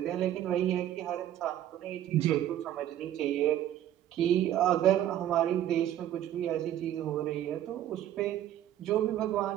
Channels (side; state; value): left; quieter; 11.8 dB